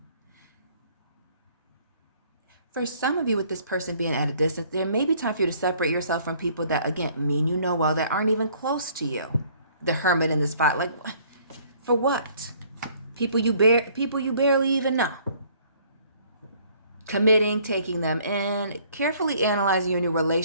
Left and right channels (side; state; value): both; inverted; correlation -0.59